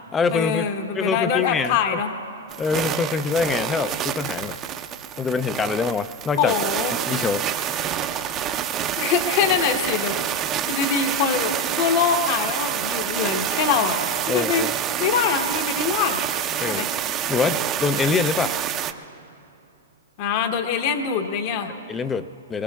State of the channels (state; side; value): normal; both; correlation 0.23